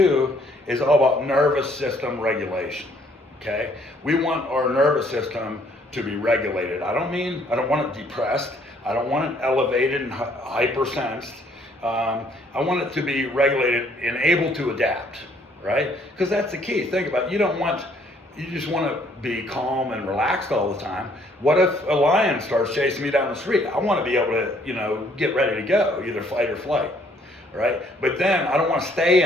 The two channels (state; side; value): normal; both; correlation 0.64